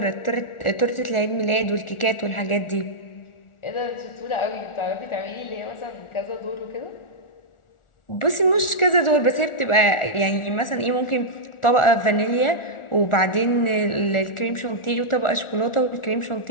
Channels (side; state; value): right; late; 1.4 ms